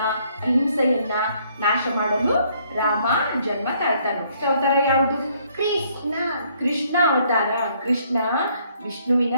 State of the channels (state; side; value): inverted; both; correlation -0.66